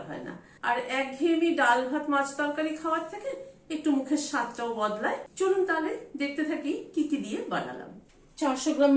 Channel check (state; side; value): identical; both; correlation 1.00